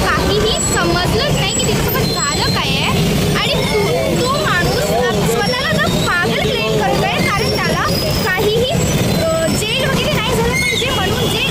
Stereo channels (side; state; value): both; identical; correlation 1.00